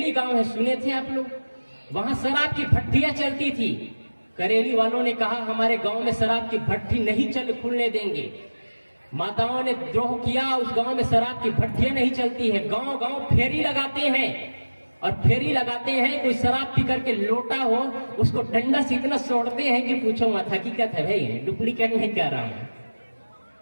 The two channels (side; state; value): both; inverted; correlation -1.00